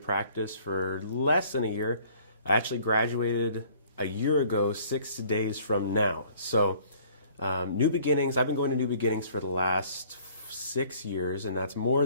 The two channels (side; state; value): both; inverted; correlation -0.56